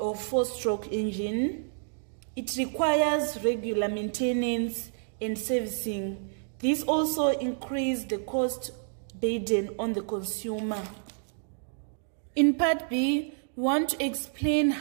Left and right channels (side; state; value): left; silent; digital silence